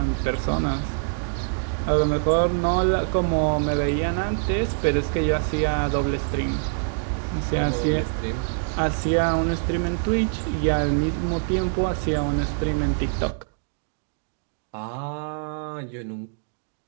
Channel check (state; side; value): silent; left; digital silence